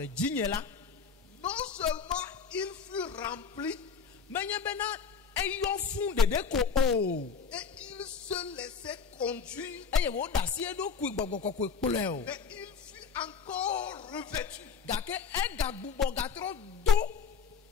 dzinye la, non seulement il fut rempli, menye bena eyɔ fũu ɖeɖe ko o, et il se laissait conduire, eye wòɖe asi eɖokui gbɔgbɔ kɔkɔe kplɔe o, mais il fut encore revêtu. gake egagbugbɔ gatrɔ do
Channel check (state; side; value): quieter; right; 5.9 dB